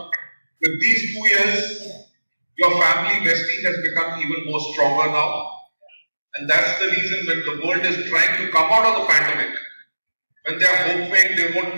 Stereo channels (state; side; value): inverted; both; correlation -1.00